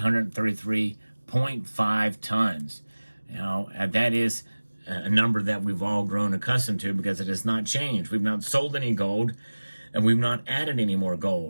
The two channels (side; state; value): both; inverted; correlation -1.00